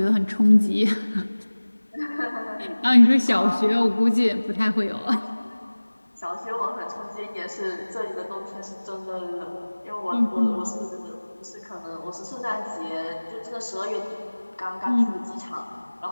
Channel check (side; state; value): both; inverted; correlation -1.00